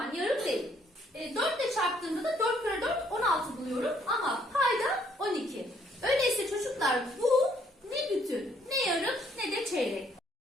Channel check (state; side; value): normal; both; correlation 0.66